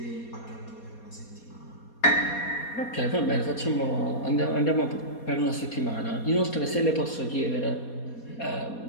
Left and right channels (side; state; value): right; late; 4.2 ms